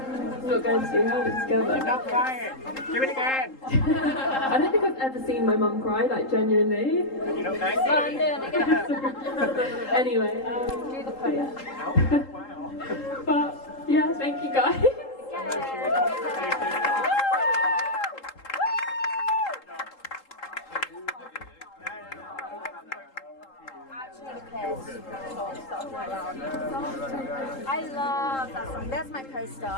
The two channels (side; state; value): right; late; 3.8 ms